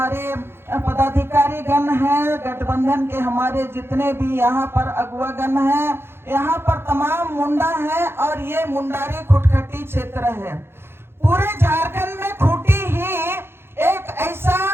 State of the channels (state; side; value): late; left; 0.11 ms